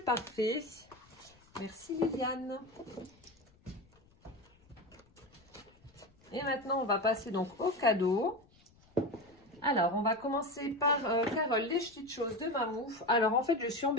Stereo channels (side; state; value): left; noise; rumble, 30 dB below the sound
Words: Merci Liliane. Et maintenant, on va passer donc au cadeau. Alors, on va commencer par Carole, les petites choses de Mamouf. Alors, en fait, je suis